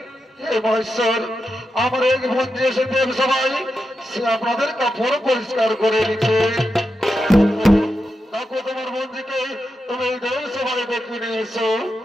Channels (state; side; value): normal; both; correlation 0.88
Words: হে মহেশ্বর, আমার এক বন্ধু এসে দেব সবাই সে আপনাদের কাপড় পরিষ্কার করে নিচ্ছে। দেখো তোমার বন্ধুকে তুমি দেব সবাই দেখে নিয়ে এসো।